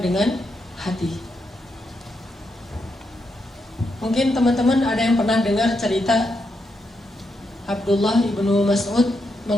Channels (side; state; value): both; normal; correlation 0.82